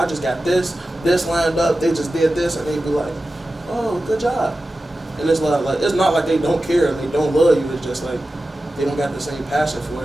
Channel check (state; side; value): normal; both; correlation 0.94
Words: just got this lined up, they just did this, and they be like, oh, good job. And it's like it's not like they don't care and they don't love you, it's just like, they don't got the same passion for